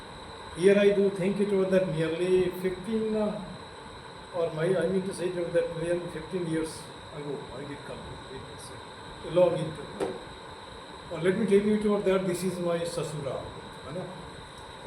Here I do think it was that nearly 15, I mean to say it was that nearly 15 years ago I did come to it. A long interview. Let me tell you it was that this is my sasura,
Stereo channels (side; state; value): both; identical; correlation 1.00